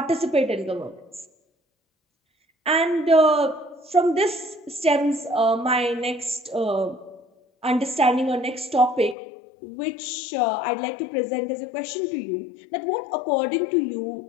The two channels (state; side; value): drops out; right; at 9.2 s